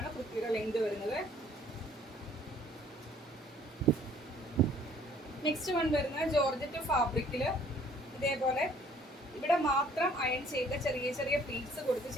കുർത്തിയുടെ ലെങ്ത് വരുന്നത്. നെക്സ്റ്റ് വൺ വരുന്നത് ജോർജറ്റ് ഫാബ്രിക്കില് ഇതേപോലെ ഇവിടെ മാത്രം അയൺ ചെയ്ത ചെറിയ ചെറിയ പ്ലീറ്റ്സ് കൊടുത്ത്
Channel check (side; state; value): both; normal; correlation 0.58